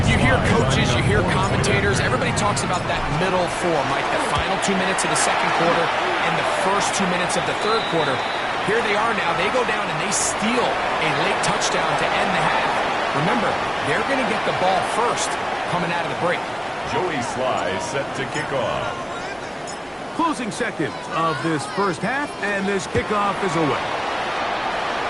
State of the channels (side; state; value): both; identical; correlation 1.00